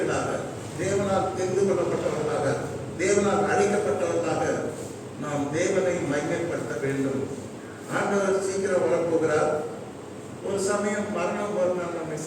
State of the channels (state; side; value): identical; both; correlation 1.00